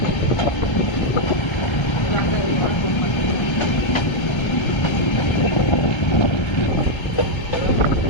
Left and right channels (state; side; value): late; right; 1.3 ms